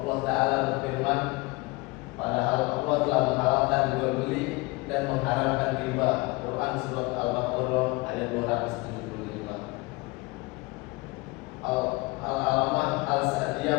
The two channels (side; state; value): right; quieter; 24.4 dB